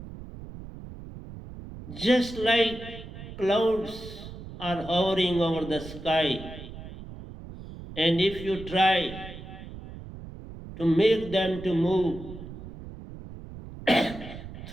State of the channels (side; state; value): right; noise; rumble, 13 dB below the sound